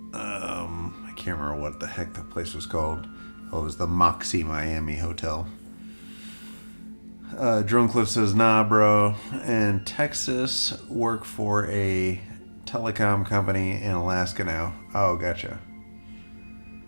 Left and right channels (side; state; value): both; inverted; correlation -1.00